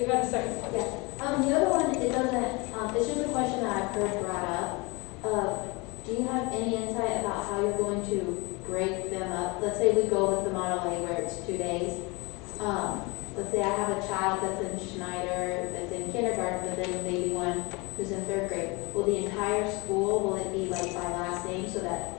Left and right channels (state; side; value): quieter; right; 26.7 dB